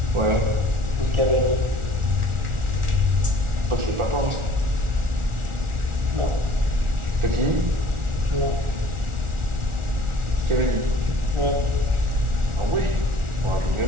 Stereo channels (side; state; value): left; late; 1.4 ms